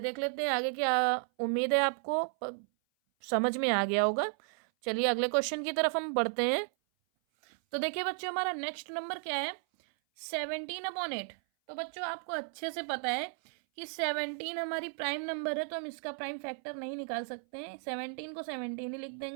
लेते हैं आगे, क्या उम्मीद है आपको समझ में आ गया होगा। चलिए अगले क्वेश्चन की तरफ हम बढ़ते हैं। तो देखिए बच्चों हमारा नेक्स्ट नंबर क्या है, 17/8। तो बच्चों आपको अच्छे से पता है कि 17 हमारी प्राइम नंबर है तो हम इसका प्राइम फैक्टर नहीं निकाल सकते हैं, 17 को 17 ही लिख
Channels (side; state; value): left; silent; 55 dB below the other